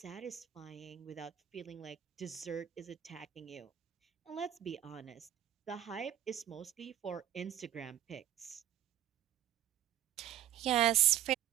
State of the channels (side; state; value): left; quieter; 11.6 dB